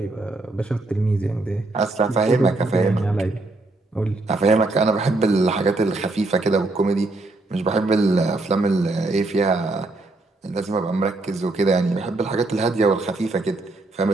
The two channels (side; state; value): left; quieter; 3.1 dB